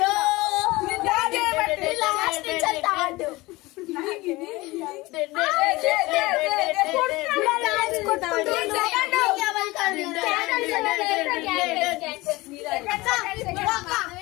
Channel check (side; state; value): right; quieter; 21.1 dB